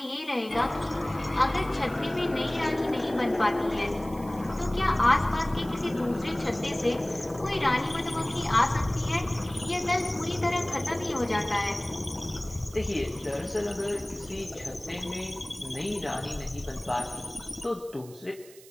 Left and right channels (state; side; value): noise; right; hiss, 21 dB below the sound